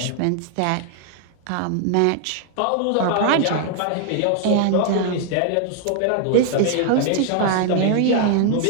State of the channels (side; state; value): both; different; correlation 0.00